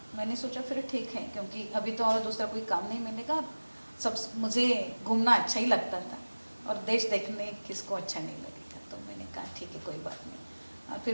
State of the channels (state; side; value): inverted; both; correlation -1.00